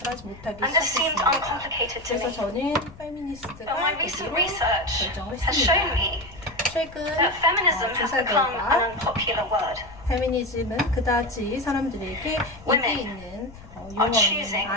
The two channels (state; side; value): noise; left; rumble, 19 dB below the sound